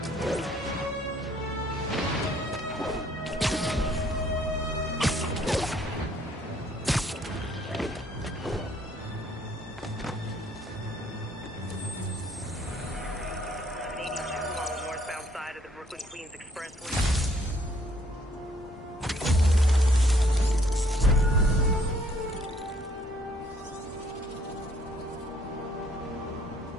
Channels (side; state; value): both; normal; correlation 0.64